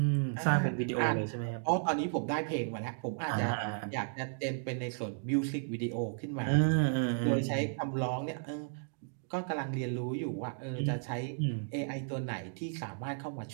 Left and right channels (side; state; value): left; silent; digital silence